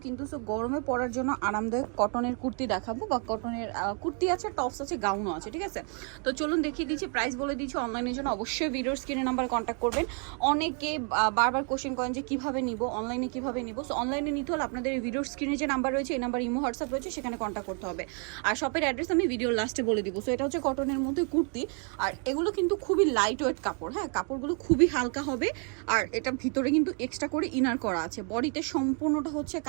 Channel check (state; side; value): quieter; left; 39.5 dB